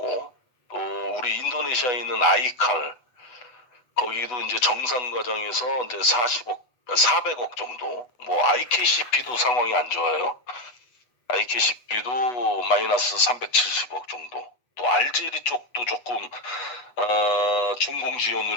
또 우리 인도네시아에 있는 아이칼 거기도 이제 정산 과정에서 이제 400억 정도, 뭐 IKCP도 상황이 안 좋아요. IKCP도 마이너스 370억 정도. 또 알제리 쪽도 조금 준공 지원을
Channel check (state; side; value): late; right; 8.1 ms